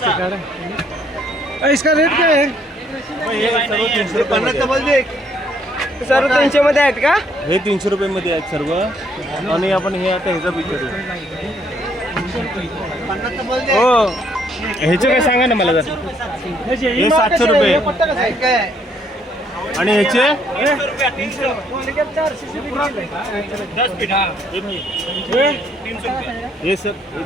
इसका रेट क्या है हे सर्व 300 रुपये सर्व 300 मध्ये आहेत का हे 300 रुपये मध्ये आहेत सर्व. आणि आपण हे आता ह्याचा विचारू हो ह्याचे काय सांगा ना मला जर. हे 700 रुपये आणि ह्याचे ये सब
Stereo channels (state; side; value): normal; both; correlation 0.68